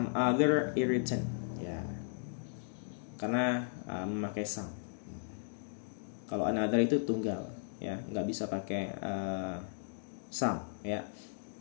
other irritant ya. Karena memakai some. Kalau another itu tunggal ya, nggak bisa pakai some ya.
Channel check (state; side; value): silent; right; digital silence